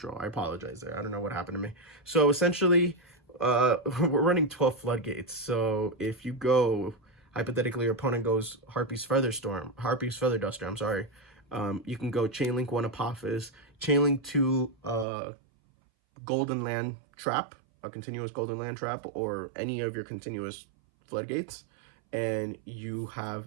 I apologize there. I don't know what happened to me. So essentially, we're running 12 floodgates. So if you go, hypothetically, your opponent goes Harpy's Feather Duster, I'm sorry. You can go Chainlink 1 Apophis, Chainlink 2 Golden Land Trap, a continuous Golden Land Trap, or any of your continuous floodgates, and you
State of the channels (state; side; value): drops out; left; at 15.1 s